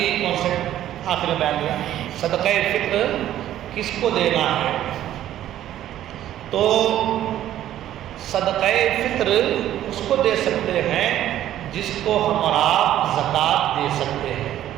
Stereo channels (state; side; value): quieter; left; 12.3 dB